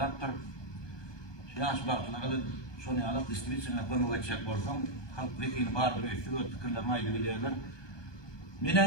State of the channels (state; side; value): late; right; 1.2 ms